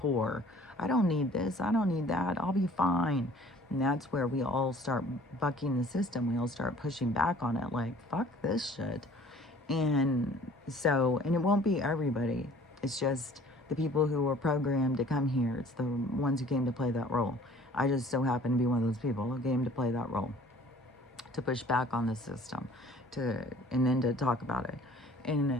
I don't need this. I don't need that. I'll be fine. And that's where we all start bucking the system. We all start pushing back on it, like, fuck this shit. And so, and it won't be everybody. It's just the people who were programmed to come here. It's the ones who came to play that role. I just so happen to be one of those people who came to play that role, to push back on the system, and then to talk about it.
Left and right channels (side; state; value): both; normal; correlation 0.52